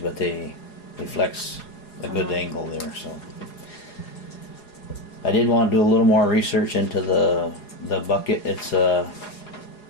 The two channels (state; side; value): late; right; 4.8 ms